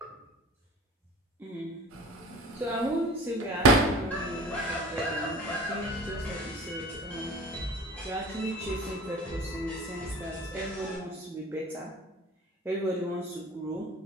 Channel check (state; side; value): normal; both; correlation 0.40